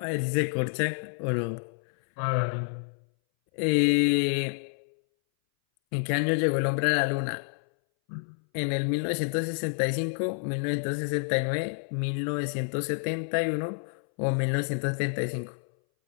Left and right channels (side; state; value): right; silent; 59 dB below the other